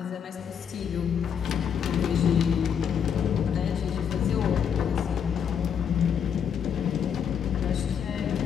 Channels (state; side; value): quieter; right; 7.7 dB